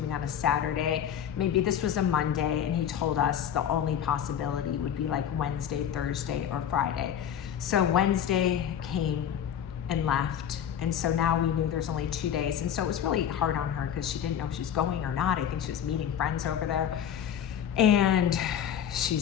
on a Saturday. Maybe this was a Monday, and he told us the only possibility would be like Wednesday, Thursday, or Friday. So Wednesday came and left. And so now we knew there's only 2 days. And so it was really hard on her because she didn't know if she was going or not. I think she was meeting friends over there. And she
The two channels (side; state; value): right; quieter; 9.2 dB